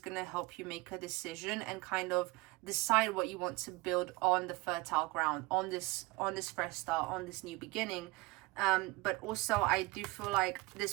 help you make a decision and kind of decide what you want to build on the fertile ground, on this fresh start, on this new beginning. But also I do feel like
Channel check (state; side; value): quieter; left; 22.6 dB